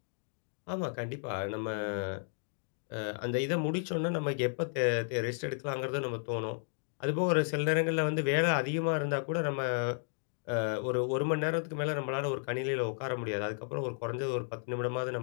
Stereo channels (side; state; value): right; silent; digital silence